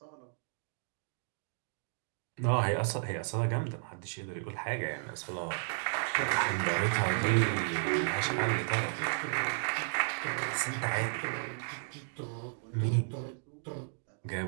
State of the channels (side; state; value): left; silent; digital silence